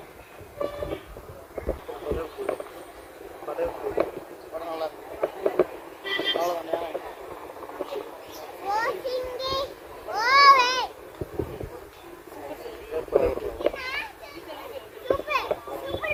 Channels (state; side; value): identical; both; correlation 1.00